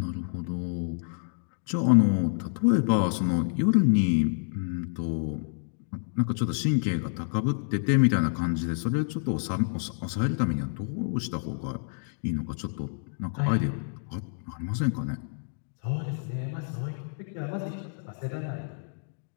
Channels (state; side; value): silent; right; digital silence